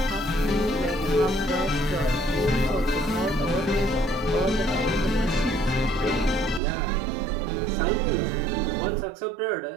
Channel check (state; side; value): drops out; left; at 6.6 s